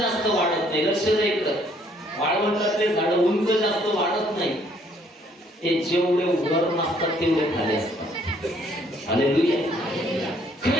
वाढत नाही. लक्ष द्या इकडं. वाळवंटातले झाड उंच जास्त वाढत नाही. ते जेवढे वर नसतात तेवढे खाली असतात. हालेलुया.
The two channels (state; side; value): normal; both; correlation 0.64